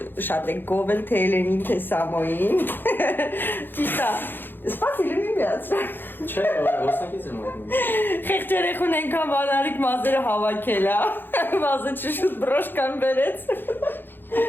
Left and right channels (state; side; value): late; right; 0.097 ms